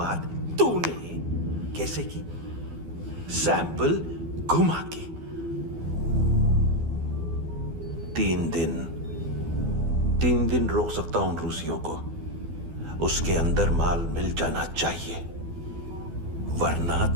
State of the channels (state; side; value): late; left; 12 ms